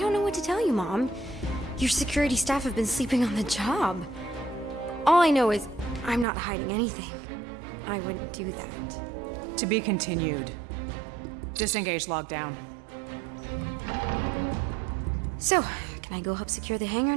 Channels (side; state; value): left; drops out; at 6.2 s